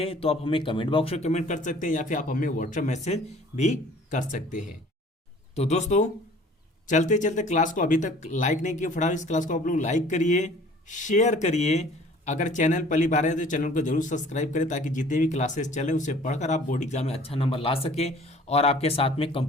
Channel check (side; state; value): both; normal; correlation 0.51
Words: तो आप हमें कमेंट बॉक्स में कमेंट कर सकते हैं या फिर आप हमें व्हाट्सएप मैसेज भी कर सकते हैं। तो दोस्तों चलते चलते क्लास को अभी तक लाइक नहीं किया, फटाफट इस क्लास को आप लोग लाइक करिए, शेयर करिए। अगर चैनल पहली बार है तो चैनल को जरूर सब्सक्राइब करें ताकि जितने भी क्लासेस चले उसे पढ़कर आप बोर्ड एग्जाम में अच्छा नंबर ला सके और आपके साथ में